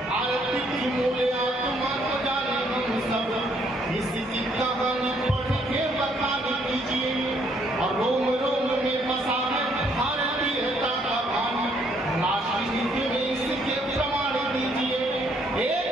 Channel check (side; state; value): both; normal; correlation 0.68